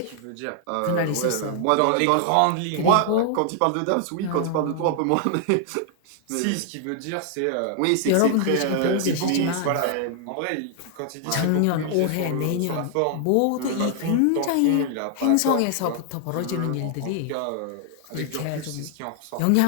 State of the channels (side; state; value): both; different; correlation 0.00